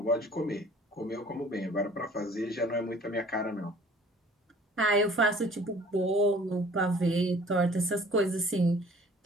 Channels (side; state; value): both; normal; correlation 0.52